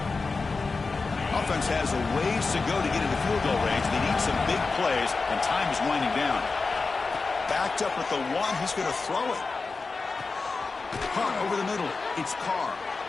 Offense has a ways to go to get into field goal range. They need some big plays, and time is winding down. Backed up at the 1, he's going to throw it. Hunt over the middle. It's Carr.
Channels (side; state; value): right; quieter; 4.1 dB